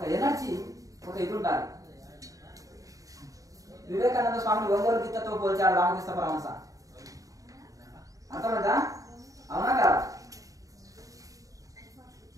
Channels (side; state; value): left; late; 0.16 ms